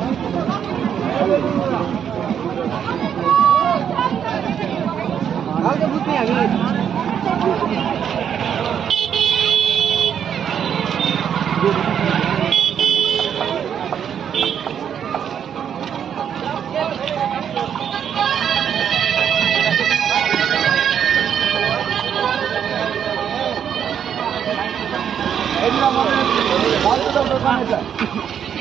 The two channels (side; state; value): left; quieter; 8.5 dB